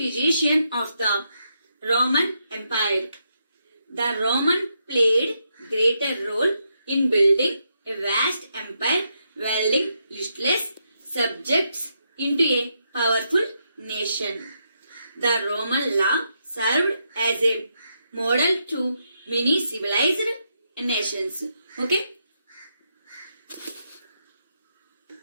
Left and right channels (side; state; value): both; inverted; correlation -0.80